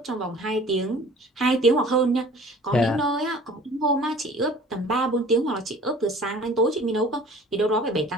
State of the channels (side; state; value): both; normal; correlation 0.48